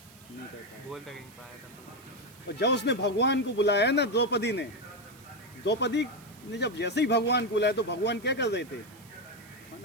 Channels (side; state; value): right; noise; hiss, 24 dB below the sound